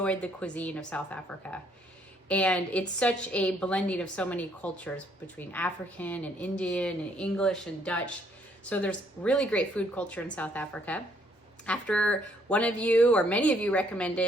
the cuisine of South Africa. And it's such a blending of so many cultures between African and Indian and English and Dutch. So there's really great food culture in South Africa. After one of you or many of you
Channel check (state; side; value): normal; both; correlation 0.67